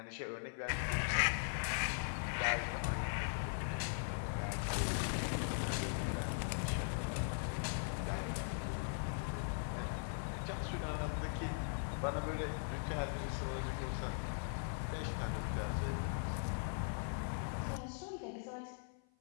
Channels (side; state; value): right; silent; 51 dB below the other